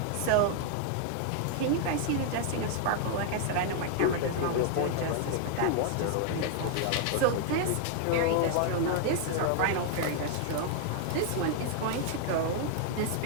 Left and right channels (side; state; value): both; different; correlation 0.00